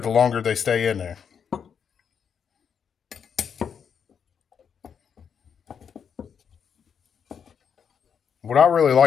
longer they stay in there. What I really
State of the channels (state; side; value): quieter; right; 7.2 dB